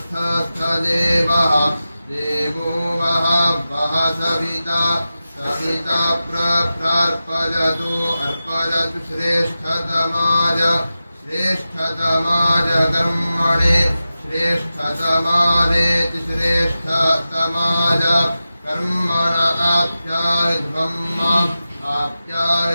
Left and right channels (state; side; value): inverted; both; correlation -0.93